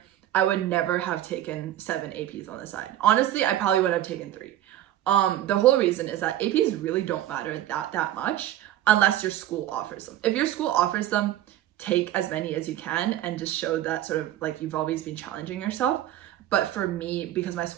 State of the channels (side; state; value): left; quieter; 12.9 dB